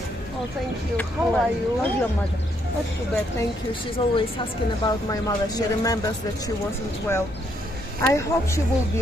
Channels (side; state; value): both; normal; correlation 0.73